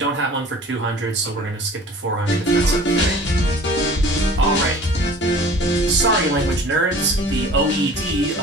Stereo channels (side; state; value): both; normal; correlation 0.45